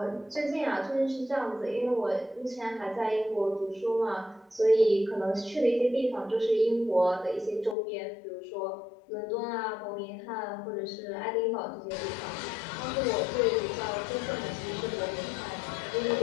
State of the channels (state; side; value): drops out; right; at 7.8 s